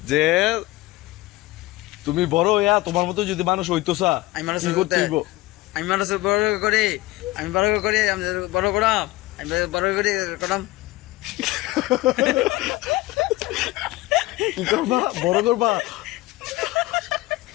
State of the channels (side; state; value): right; quieter; 18.8 dB